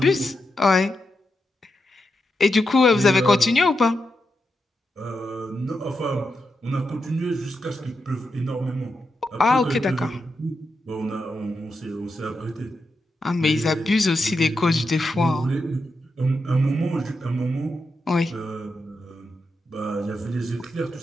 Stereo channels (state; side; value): normal; both; correlation 0.86